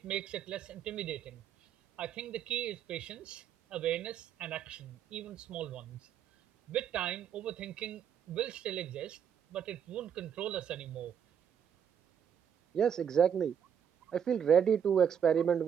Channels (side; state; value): left; quieter; 8.3 dB